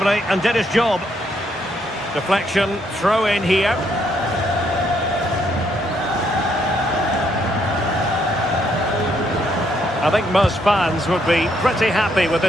and did his job. Deflection, throw in here. I think most fans would be pretty happy with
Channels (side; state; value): both; normal; correlation 0.73